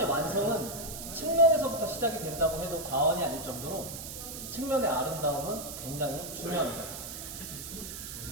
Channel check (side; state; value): right; noise; hiss, 9 dB below the sound